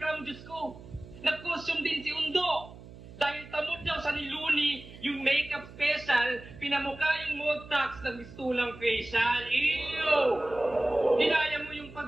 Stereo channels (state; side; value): noise; right; hum, 17 dB below the sound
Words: Diyos ko. Nag-costume din si Undo. Dahil tamod daw sa ni Looney yung makeup special, pinamukha yung Multax ng mistulang facial. Ew! Dinaya mo yung